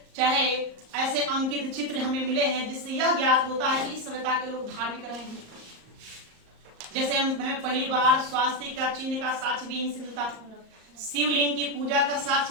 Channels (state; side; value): late; left; 38 ms